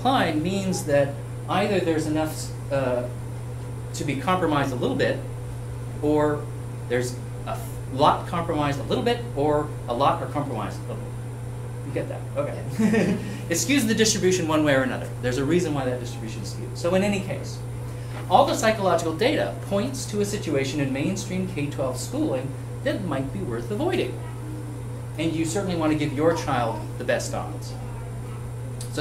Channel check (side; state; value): both; identical; correlation 1.00